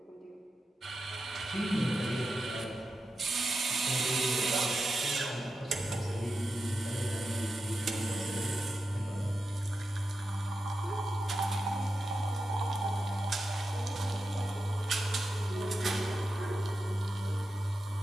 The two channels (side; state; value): both; normal; correlation 0.90